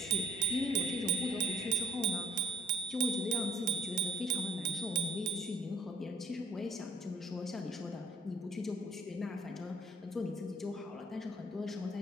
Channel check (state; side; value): normal; both; correlation 0.58